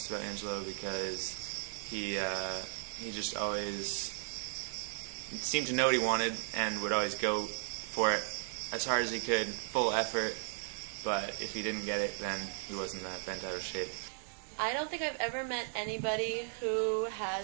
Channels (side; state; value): left; silent; digital silence